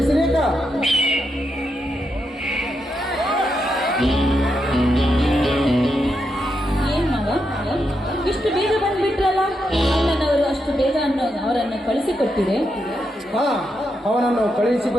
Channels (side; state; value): both; normal; correlation 0.83